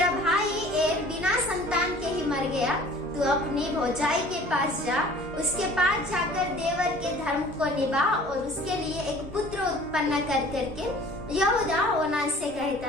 भाई एर बिना संतान के ही मर गया, तू अपनी भौजाई के पास जा, उसके पास जाकर देवर के धर्म को निभा और उसके लिए एक पुत्र उत्पन्न कर करके यहूदा ओनान से कहता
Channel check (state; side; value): normal; both; correlation 0.49